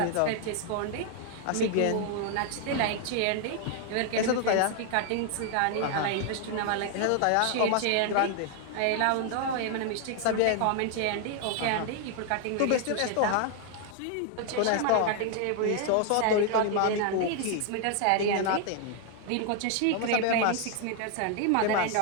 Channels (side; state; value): both; different; correlation 0.00